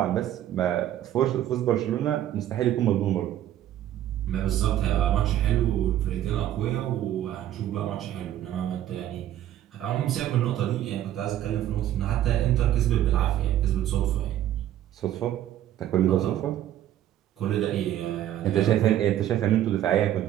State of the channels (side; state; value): left; quieter; 12.1 dB